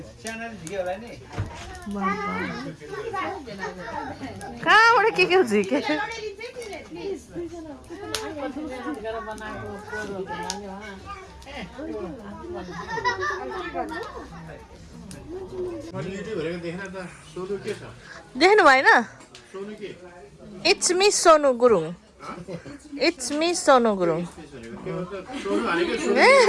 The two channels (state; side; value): identical; both; correlation 1.00